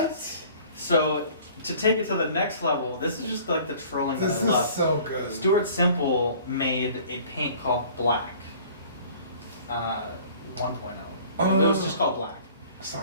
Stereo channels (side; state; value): both; inverted; correlation -0.50